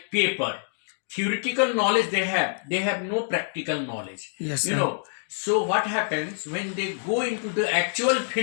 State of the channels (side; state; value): right; silent; digital silence